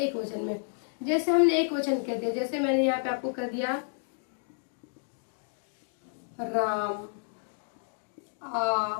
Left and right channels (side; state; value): right; silent; digital silence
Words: वचन में। जैसे हमने एक वचन कह दिया, जैसे मैंने यहाँ पे आपको कह दिया राम